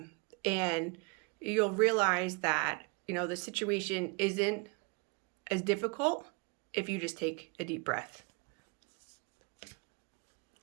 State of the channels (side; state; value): left; quieter; 29.9 dB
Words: you'll realize that, the situation isn't as difficult if you just take a deep breath.